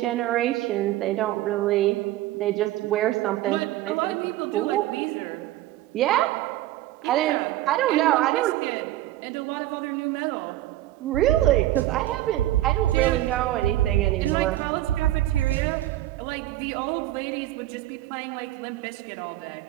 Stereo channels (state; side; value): quieter; left; 14.9 dB